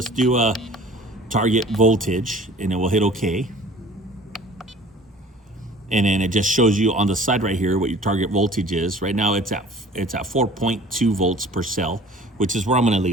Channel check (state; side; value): normal; both; correlation 0.48